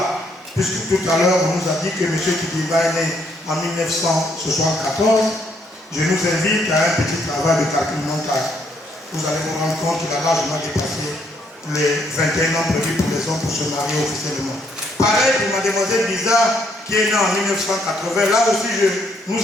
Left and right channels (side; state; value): both; normal; correlation 0.71